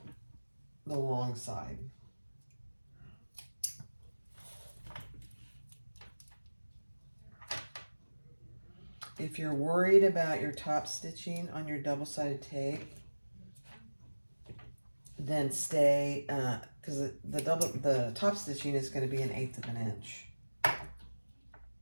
The long side. If you're worried about your top stitching on your double-sided tape, then stay, because the top stitching is going to be 1/8 of an inch.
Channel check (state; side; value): inverted; both; correlation -1.00